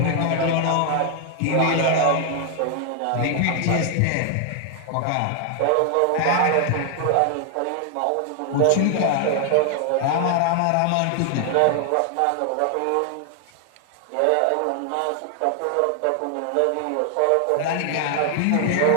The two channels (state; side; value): different; both; correlation 0.00